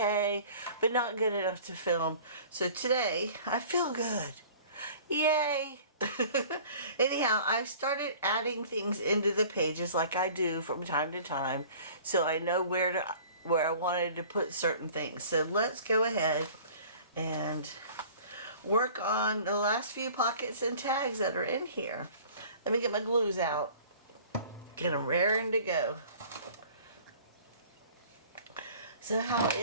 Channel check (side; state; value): both; inverted; correlation -0.47